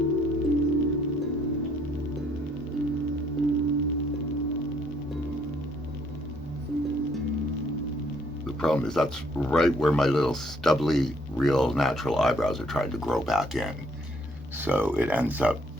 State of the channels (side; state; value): both; normal; correlation 0.66